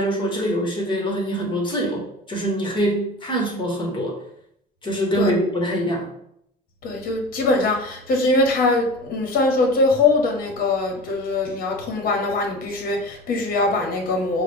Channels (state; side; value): normal; both; correlation 0.35